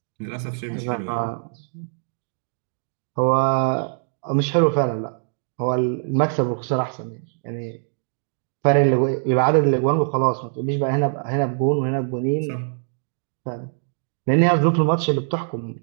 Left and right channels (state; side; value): silent; left; digital silence